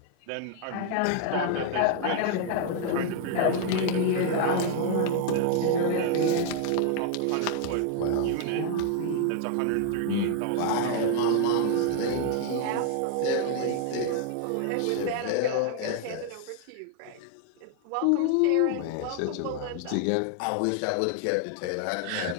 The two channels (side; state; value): both; different; correlation 0.00